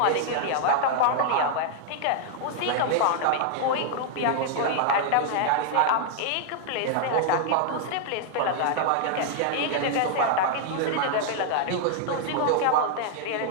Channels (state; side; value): different; both; correlation 0.00